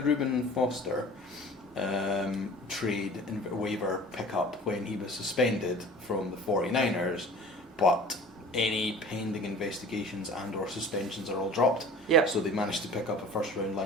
Reuben Foster trade and waiver pickup when he was suspended from the 49ers, but any pending investigations and or suspensions are all dropped. So they managed to pick up a first round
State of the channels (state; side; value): normal; both; correlation 0.43